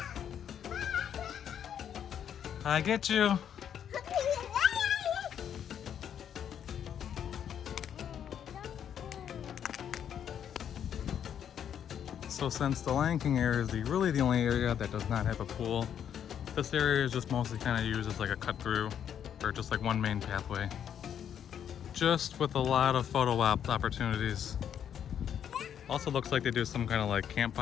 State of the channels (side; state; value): right; quieter; 9.0 dB